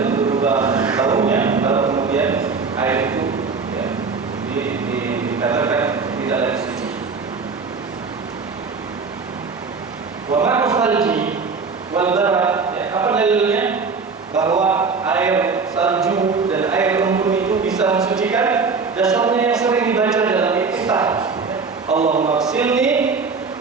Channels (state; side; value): quieter; left; 4.8 dB